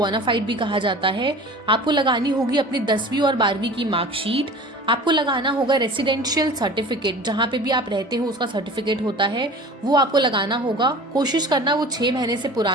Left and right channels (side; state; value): both; normal; correlation 0.40